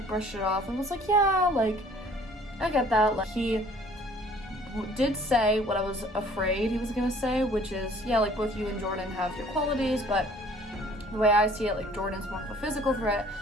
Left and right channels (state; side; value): normal; both; correlation 0.54